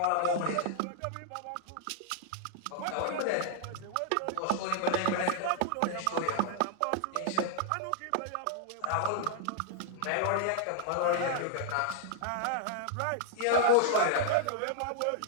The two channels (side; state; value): both; different; correlation -0.01